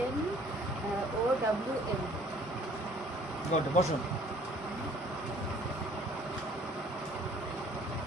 O W N. Good, বসুন।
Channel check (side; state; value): both; normal; correlation 0.56